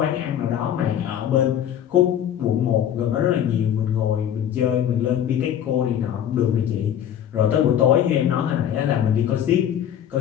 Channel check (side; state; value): right; quieter; 10.0 dB